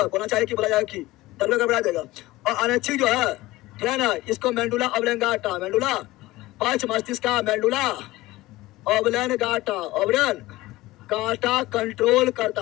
बोलना चाहिए कि बोला जाएगा कि, तब गड़बड़ा जाएगा। और अनैच्छिक जो है, ठीक है ना, इसको मेंडुला ऑब्लेंगाटा, मेंडुला पक्ष मस्तिष्क का मेंडुला ऑब्लेंगाटा, ऑब्लेन गाटा कंट्रोल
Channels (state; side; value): quieter; right; 18.5 dB